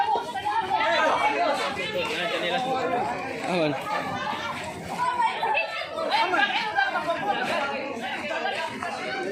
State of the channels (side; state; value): both; identical; correlation 1.00